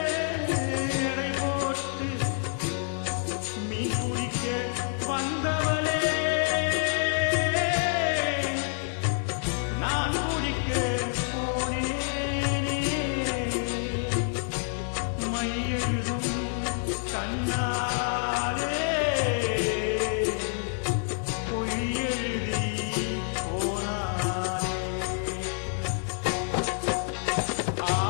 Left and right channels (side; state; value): right; silent; 59 dB below the other